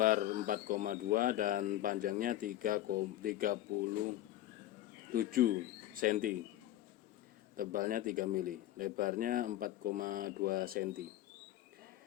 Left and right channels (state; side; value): quieter; right; 14.1 dB